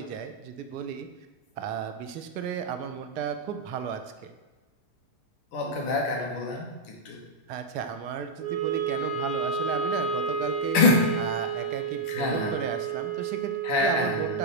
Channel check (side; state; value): right; late; 10 ms